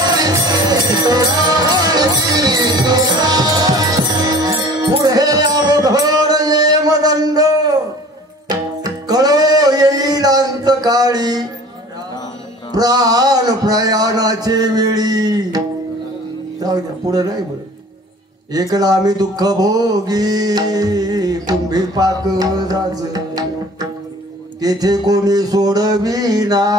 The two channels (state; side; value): normal; both; correlation 0.46